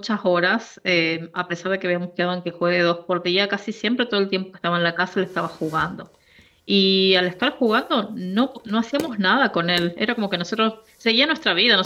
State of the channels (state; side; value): identical; both; correlation 1.00